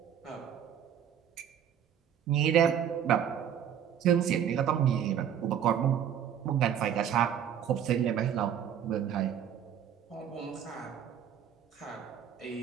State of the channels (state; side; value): quieter; left; 9.1 dB